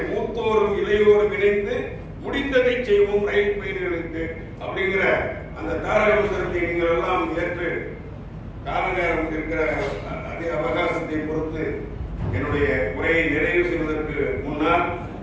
மூத்தோரும் இளையோரும் இணைந்து முடிந்ததை செய்வோம் ரயில் பயணிகளுக்கு அப்படிங்கிற அந்த தாரக மந்திரத்தை நீங்கள் எல்லாம் ஏற்று கால நேரம் இருக்கிற அதே அவகாசத்தை பொறுத்து என்னுடைய உரையை நிறைவு செய்வதற்கு முன்னால்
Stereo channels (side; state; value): both; identical; correlation 1.00